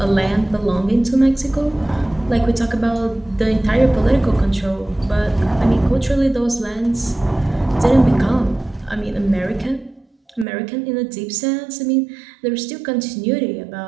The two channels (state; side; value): drops out; left; at 10.5 s